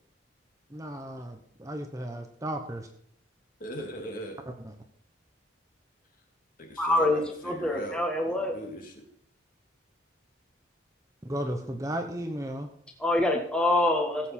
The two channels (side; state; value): both; normal; correlation 0.63